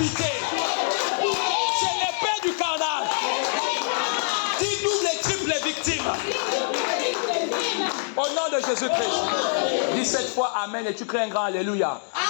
Jésus-Christ. Dis 7 fois Amen et tu crées un grand Alléluia.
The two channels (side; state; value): right; silent; digital silence